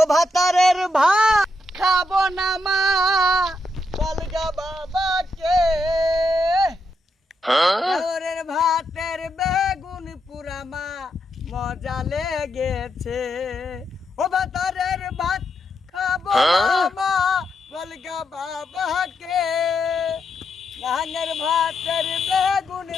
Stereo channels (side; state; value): both; normal; correlation 0.82